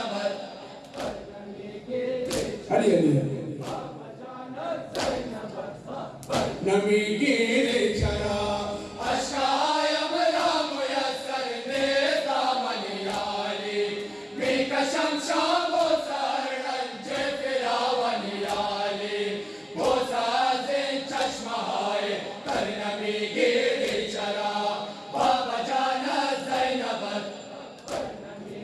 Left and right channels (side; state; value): both; identical; correlation 1.00